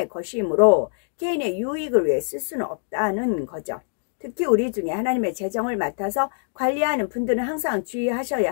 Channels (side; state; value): right; silent; digital silence